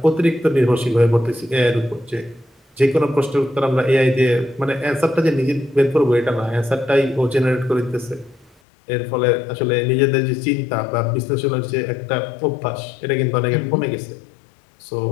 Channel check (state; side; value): drops out; right; at 8.6 s